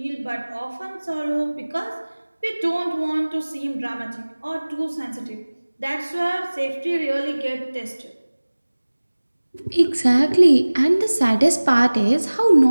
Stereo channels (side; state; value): both; inverted; correlation -1.00